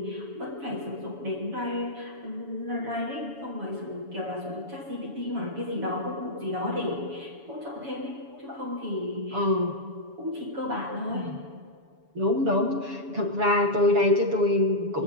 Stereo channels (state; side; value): late; left; 7.1 ms